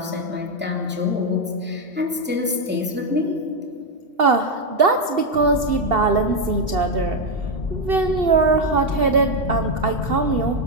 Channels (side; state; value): both; normal; correlation 0.04